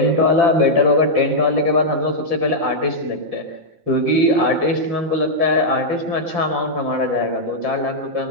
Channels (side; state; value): left; late; 5.7 ms